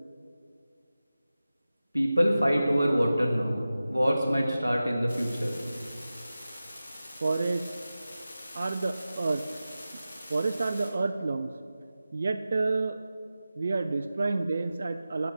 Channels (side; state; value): both; inverted; correlation -0.95